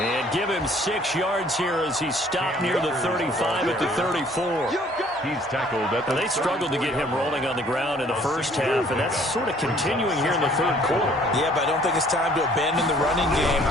give him 6 yards here as he's stopped near the 35 at the 34. He's tackled at the. They struggled to get him rolling on the ground in the first half, and that's sort of continuing here in the third quarter. Yeah, but I don't think it's time to abandon the running game.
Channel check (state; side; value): normal; both; correlation 0.58